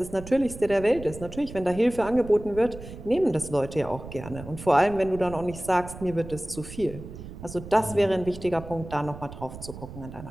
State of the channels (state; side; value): noise; right; rumble, 13 dB below the sound